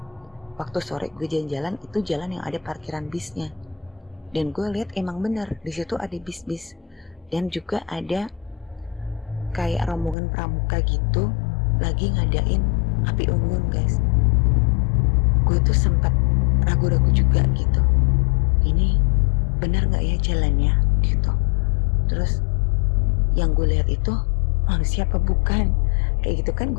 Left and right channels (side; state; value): right; drops out; at 10.2 s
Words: waktu sore gue jalan-jalan, itu jalan yang ada parkiran bisnya. Dan gue lihat emang bener di situ ada bis-bis, dan juga ada kayak rombongan pramuka gitu lagi ngadain api unggun guys. Gue tuh sempat ragu-ragu juga gitu, ini bener nggak ya jalannya gitu. Terus yang gue lihat itu manusia apa bukan, kayak gitu kan.